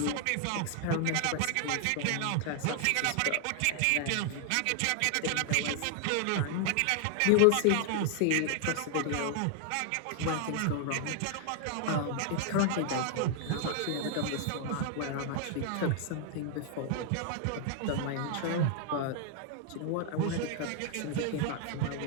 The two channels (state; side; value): different; both; correlation 0.00